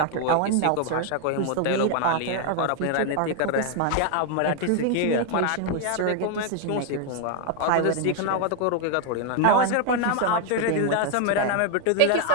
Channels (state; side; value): different; both; correlation 0.00